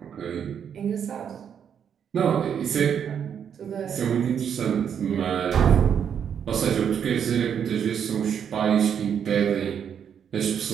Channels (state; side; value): quieter; left; 8.1 dB